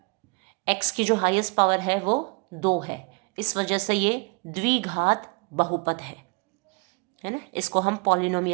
x की जो हाईएस्ट पावर है वो 2 है, इस वजह से ये द्विघात बहुपद है ना. इसको हम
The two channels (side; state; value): left; quieter; 31.6 dB